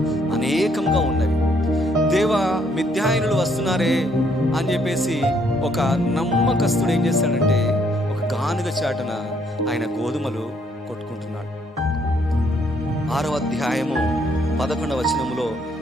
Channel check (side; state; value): both; normal; correlation 0.69